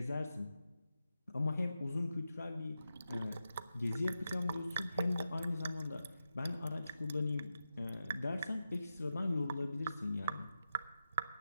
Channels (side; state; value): both; inverted; correlation -0.88